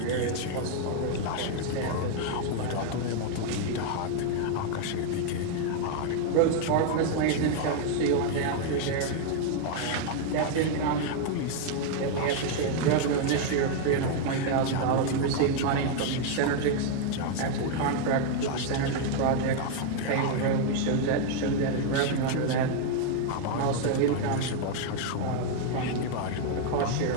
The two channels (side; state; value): both; different; correlation 0.00